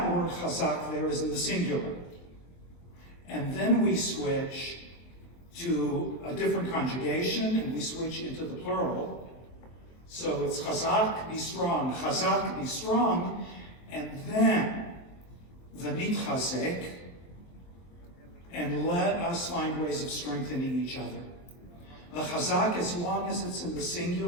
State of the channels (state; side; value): late; right; 23 ms